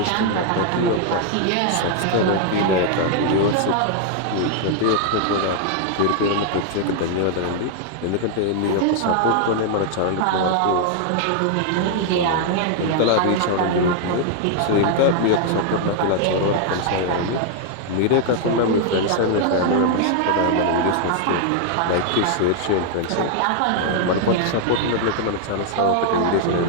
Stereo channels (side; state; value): both; different; correlation 0.00